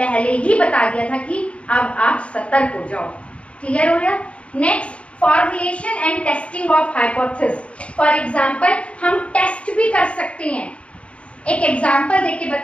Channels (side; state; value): right; late; 0.062 ms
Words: ही बता दिया था कि अब आप सतर्क हो जाओ। क्लियर हो गया? Next, formulation and testing of hypothesis. For example, हम टेस्ट भी कर सकते हैं। एक एग्जाम्पल देके